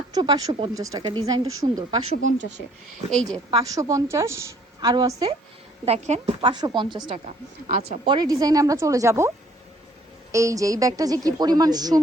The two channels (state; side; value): normal; both; correlation 0.61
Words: 550 টাকা। ডিজাইনটা সুন্দর, 550-এ। এই যে 550, আরও আছে দেখেন, 550 টাকা। আচ্ছা, পরের ডিজাইনে আমরা চলে যাব। এই যে এই ব্যাগটা যে কি পরিমাণ